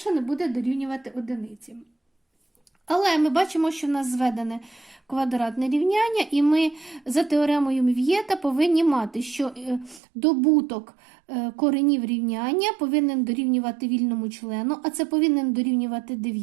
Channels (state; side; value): drops out; left; at 10.0 s